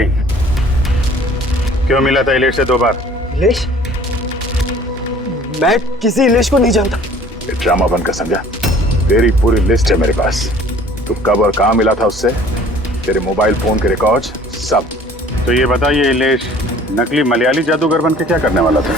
क्यों मिला था इलेश से 2 बार? इलेश? मैं किसी इलेश को नहीं जानता। ये ड्रामा बंद कर, समझा? तेरी पूरी लिस्ट है मेरे पास। तू कब और कहाँ मिला था उससे, तेरे मोबाइल फोन के रिकॉर्ड्स सब। तो ये बता, ये इलेश नकली मलयाली जादूगर बन के क्या करने वाला था?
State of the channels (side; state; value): both; normal; correlation 0.51